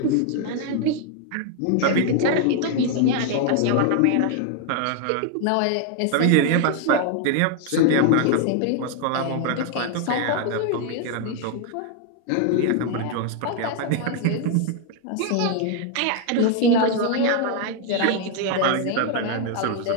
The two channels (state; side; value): different; both; correlation 0.00